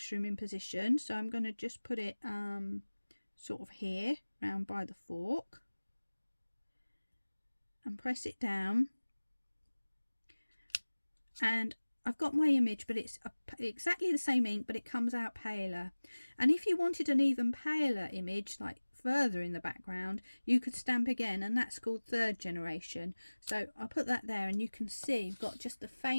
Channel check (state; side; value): inverted; both; correlation -1.00